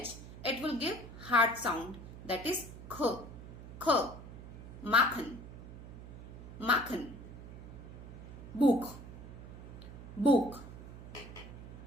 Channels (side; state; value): right; noise; hum, 13 dB below the sound